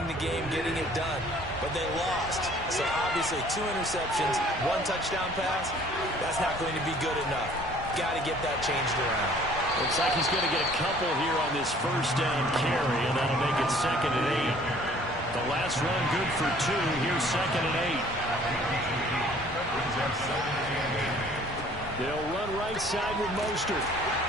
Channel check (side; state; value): both; normal; correlation 0.55